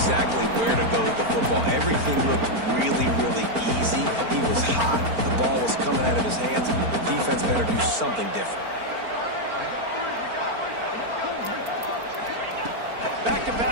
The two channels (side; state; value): left; late; 4.4 ms